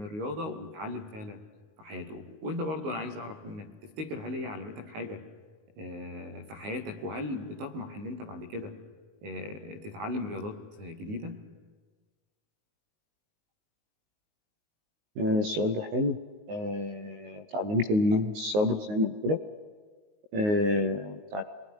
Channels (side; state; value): left; late; 19 ms